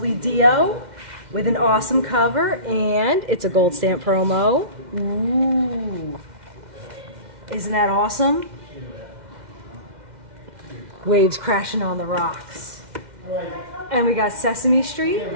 Dio with an awesome cover, and it's a gold stamp promo. Ooh. Isn't that awesome? Waves crashing on the rocks. And we got Sesame Street,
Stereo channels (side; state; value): left; late; 2.1 ms